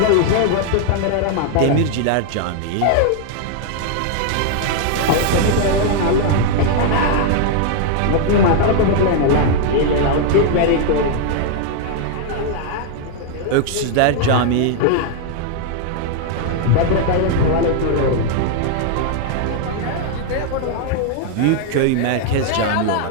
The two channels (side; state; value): both; different; correlation 0.00